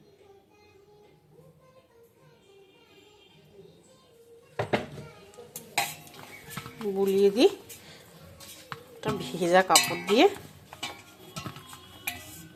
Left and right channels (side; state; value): both; identical; correlation 1.00